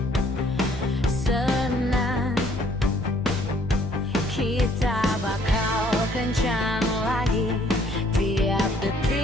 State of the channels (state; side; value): normal; both; correlation 0.62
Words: senang kita bakal kencan lagi, tiap